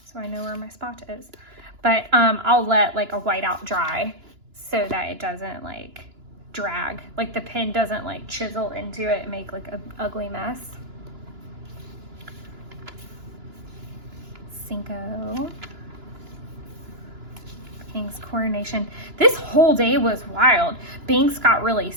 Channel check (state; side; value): late; left; 2.9 ms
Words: so I know where my spot is. But I'll let like a whiteout dry so that it doesn't like drag, like the pen doesn't like chisel into it and make like an ugly mess. Cinco. King's coronation. This whole day was wild. Binks got really